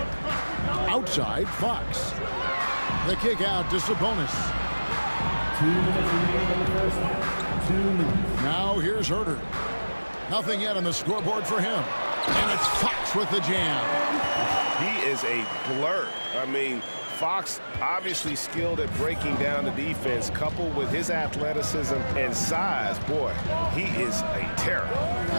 Outside, Fox. The kick out to Sabonis. 2 minutes remaining in the first half. 2 minutes. Now here's Herter. Nothing yet on the scoreboard for him. And it's Fox with the jam. He is a blur. I mean, Fox obviously skilled at breaking down the defense, coupled with his athleticism and size. Boy, he is a terror.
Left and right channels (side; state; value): both; inverted; correlation -1.00